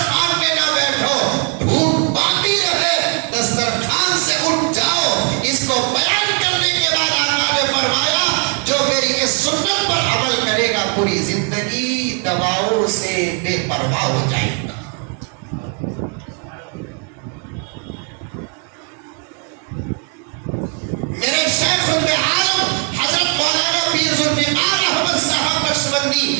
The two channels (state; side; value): quieter; left; 39.4 dB